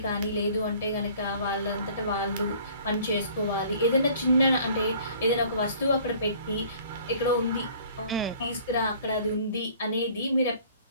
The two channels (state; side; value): inverted; both; correlation -0.53